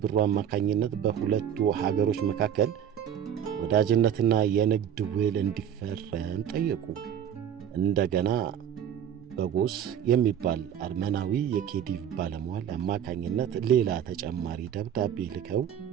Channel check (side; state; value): left; quieter; 9.3 dB